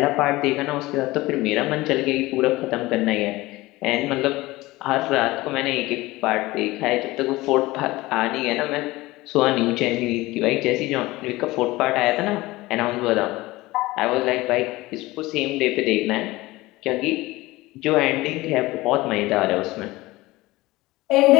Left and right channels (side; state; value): right; quieter; 19.6 dB